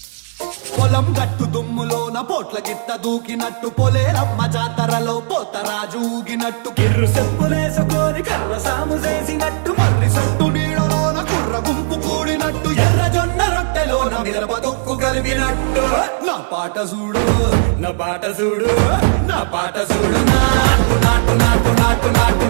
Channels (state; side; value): silent; left; digital silence